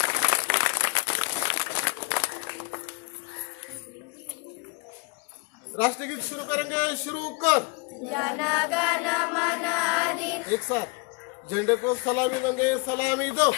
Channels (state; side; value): quieter; right; 30.4 dB